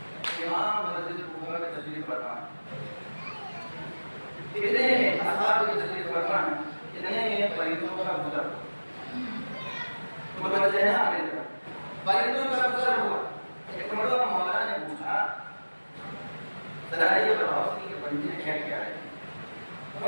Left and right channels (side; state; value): both; inverted; correlation -1.00